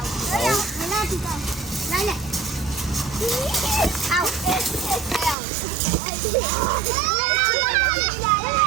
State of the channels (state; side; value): drops out; left; at 5.4 s